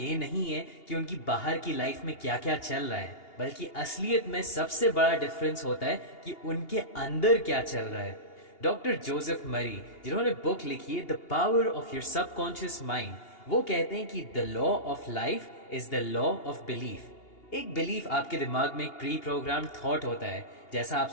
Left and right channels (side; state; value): right; late; 2.8 ms